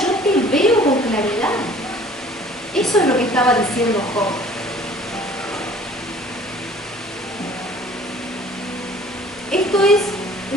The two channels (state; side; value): normal; both; correlation 0.51